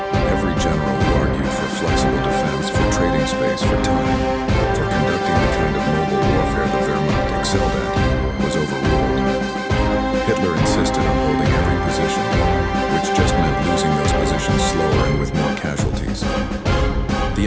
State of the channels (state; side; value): identical; both; correlation 1.00